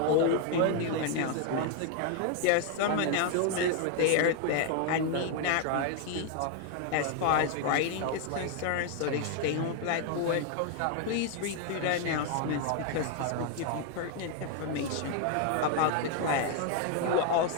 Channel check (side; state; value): both; different; correlation 0.00